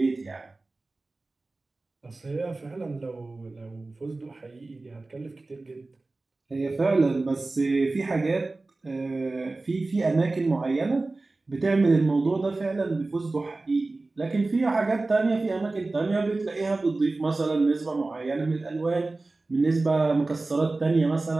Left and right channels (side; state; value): left; quieter; 3.3 dB